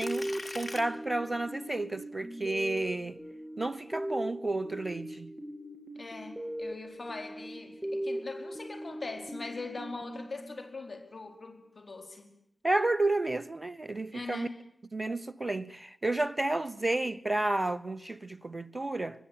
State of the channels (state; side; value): normal; both; correlation 0.96